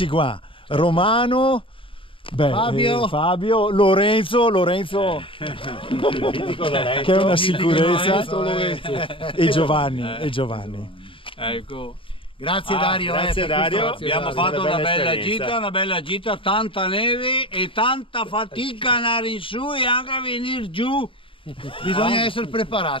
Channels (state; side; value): late; right; 0.25 ms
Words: qua, Romano, Fabio, Lorenzo che è una sicurezza, e Giovanni. Ecco. Grazie Dario. Grazie Dario. Abbiamo fatto una bella gita, tanta neve e tanta fatica andare in su e anche a venire giù. Bisogna essere